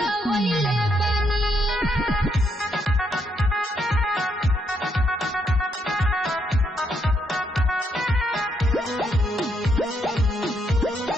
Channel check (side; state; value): both; normal; correlation 0.76